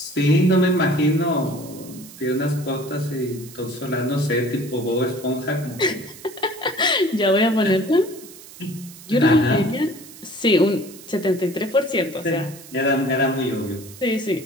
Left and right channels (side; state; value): right; noise; hiss, 18 dB below the sound